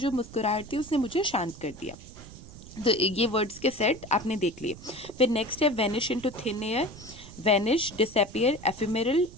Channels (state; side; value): noise; right; rumble, 16 dB below the sound